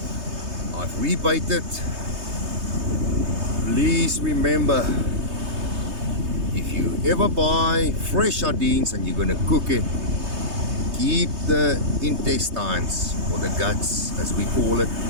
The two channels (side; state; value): left; late; 3.2 ms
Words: I've rebaited. Please remember, if you ever buy fresh sardines and you're gonna cook it, keep the intestines, or the guts as we call it,